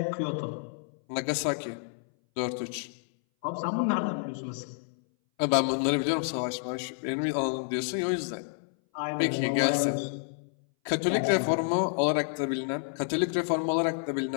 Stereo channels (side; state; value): right; silent; 58 dB below the other